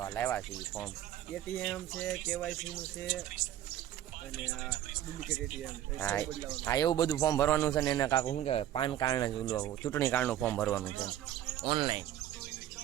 લાવ્યા છે ફોર્મ. એટીએમ છે, કેવાયસી નું છે અને આ ડુપ્લિકેટ એટીએમ. હા એવું બધું ફોર્મ ભરવાનું છે ને. એના કાકા શું કહેવાય, પાન કાર્ડ ચૂંટણી કાર્ડનું ફોર્મ ભરવાનું છે ઓનલાઈન.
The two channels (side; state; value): left; quieter; 12.2 dB